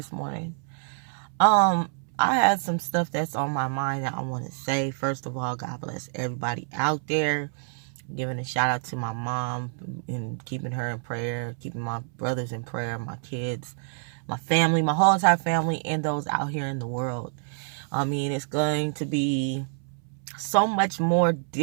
morning. I had some stuff that's on my mind that I want to say. First of all, God bless everybody out there. Giving a shout out to my mom and keeping her in prayer, keeping my brothers in prayer, my kids, my family, my whole entire family, and those out here in the world. I mean, it's going to be so much more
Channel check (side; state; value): left; silent; 60 dB below the other